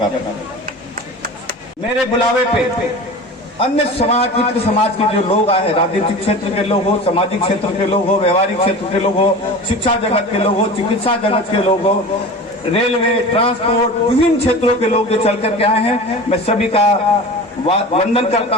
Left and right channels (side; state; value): both; normal; correlation 0.34